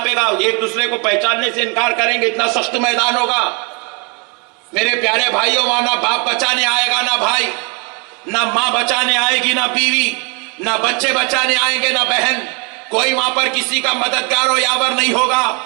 گا، ایک دوسرے کو پہچاننے سے انکار کریں گے. اتنا سخت میدان ہوگا. میرے پیارے بھائیوں، وہاں نہ باپ بچانے آئے گا نہ بھائی، نہ ماں بچانے آئے گی نہ بیوی، نہ بچے بچانے آئیں گے نہ بہن. کوئی وہاں پر کسی کا مددگار و یاور نہیں ہوگا.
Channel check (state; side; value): quieter; left; 32.9 dB